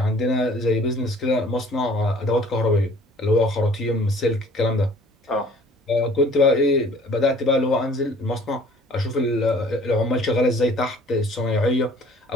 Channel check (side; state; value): both; normal; correlation 0.53